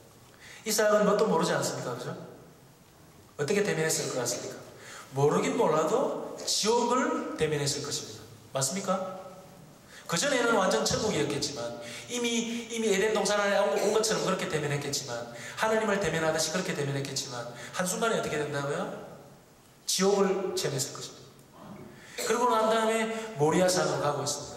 이삭은 뭣도 모르지 않습니까? 그죠? 어떻게 대면했을 것 같습니까? 모르긴 몰라도 지옥을 대면했을 것입니다. 맞습니까? 그전에는 완전 천국이었겠지만 이미 에덴 동산 안에 온 것처럼 그렇게 대면했겠지만 하나님을 대면하듯이 그렇게 대면했겠지만 한순간에 어떻게 된다고요? 지옥을 체험했을 것입니다. 그러고 난 다음에 모리아산으로 가고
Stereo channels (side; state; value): both; identical; correlation 1.00